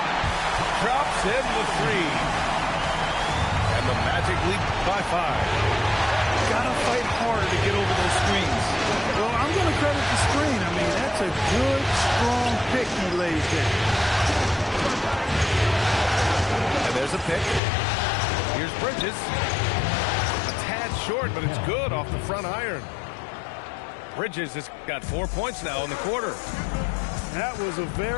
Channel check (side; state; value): right; drops out; at 17.6 s